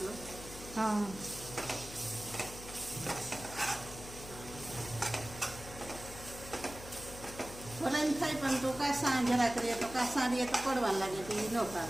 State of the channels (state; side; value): noise; left; hum, 14 dB below the sound